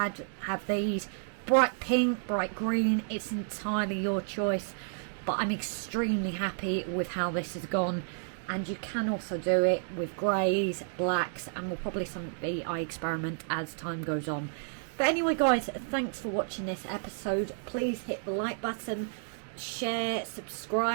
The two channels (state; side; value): silent; left; digital silence